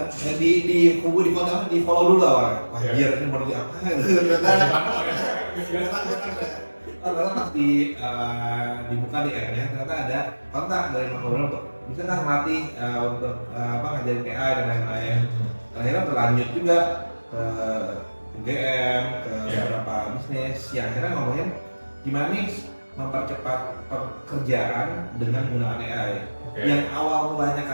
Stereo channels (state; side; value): inverted; both; correlation -1.00